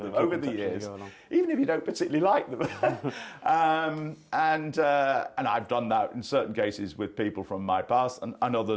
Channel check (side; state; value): both; identical; correlation 1.00